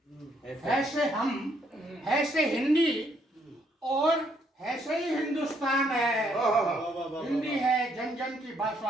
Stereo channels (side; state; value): both; normal; correlation 0.71